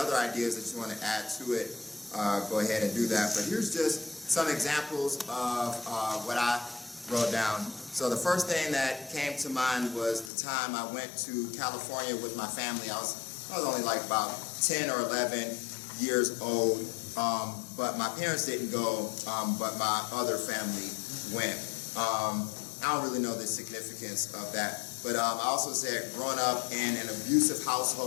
ideas that you want to add to it, go ahead and do that. But here's just some examples of what I wrote down. So the first thing that came to mind was the time I went to California with my family. I was only like about 10 or 11 years old. But my parents didn't go, but my other family went. I don't really know the significance of that, but I also said growing up in an abusive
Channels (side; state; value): right; drops out; at 10.3 s